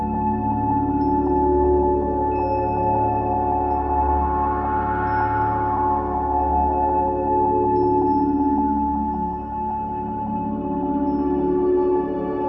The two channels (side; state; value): left; noise; hum, 21 dB below the sound